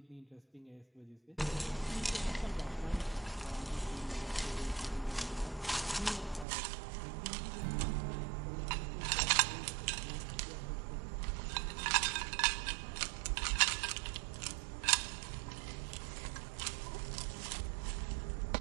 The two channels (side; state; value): left; drops out; at 6.5 s